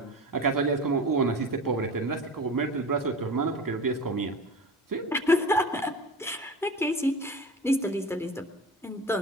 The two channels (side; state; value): both; normal; correlation 0.33